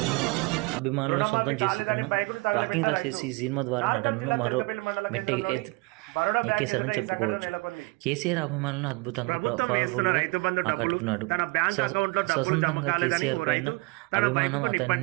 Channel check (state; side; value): quieter; left; 26.6 dB